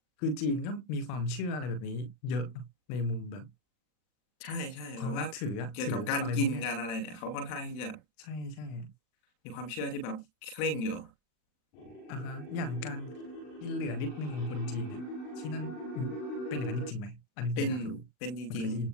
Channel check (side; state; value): right; late; 39 ms